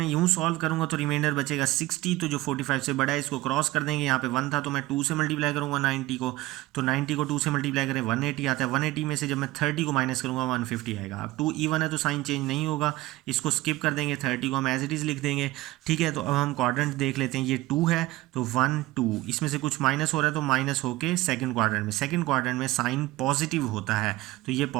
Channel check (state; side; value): quieter; left; 18.4 dB